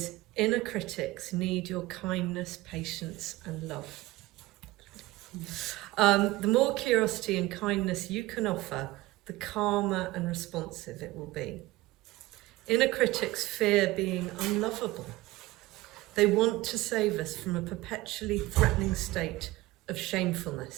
"Inner critics need your kindness, patience and love." The more curiosity and kindness you can offer, the calmer and responsive it will be. Inner critics fear being unlovable. They want to save us from a perpetually threatening state of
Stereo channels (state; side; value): quieter; left; 18.6 dB